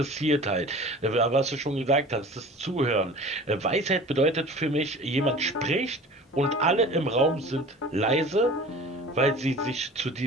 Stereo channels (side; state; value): both; normal; correlation 0.42